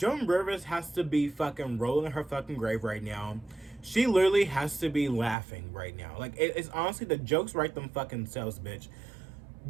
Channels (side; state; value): left; drops out; at 5.4 s